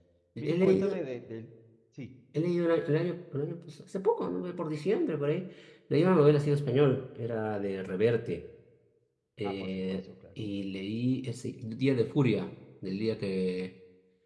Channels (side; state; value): both; identical; correlation 1.00